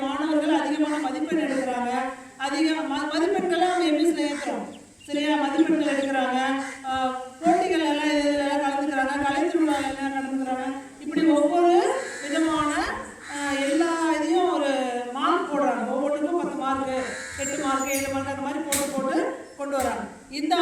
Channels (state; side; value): identical; both; correlation 1.00